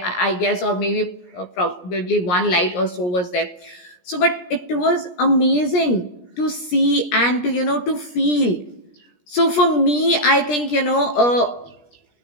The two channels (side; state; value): right; late; 17 ms